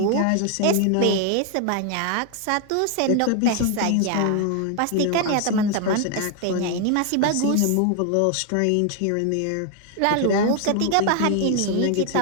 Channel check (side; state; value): both; different; correlation 0.00